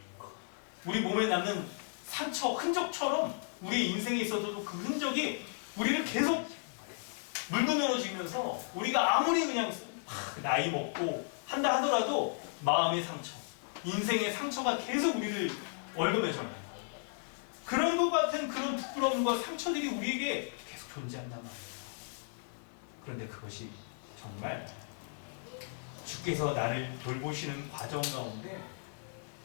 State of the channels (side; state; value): right; silent; 55 dB below the other